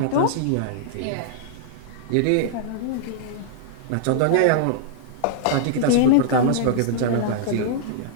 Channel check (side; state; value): both; different; correlation -0.01